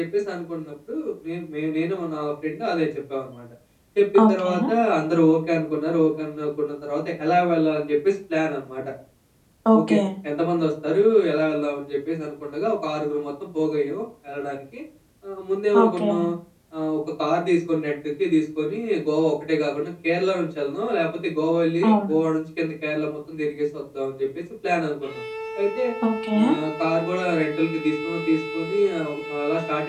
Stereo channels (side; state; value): both; identical; correlation 1.00